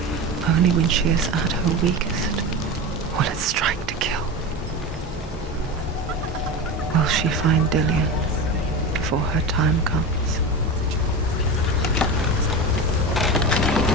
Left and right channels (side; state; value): both; normal; correlation 0.25